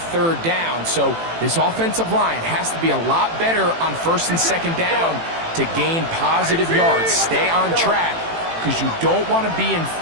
3rd down. So this offensive line has to be a lot better on 1st and 2nd down to gain positive yards. Stay on track because you don't want to be in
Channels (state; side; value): late; left; 18 ms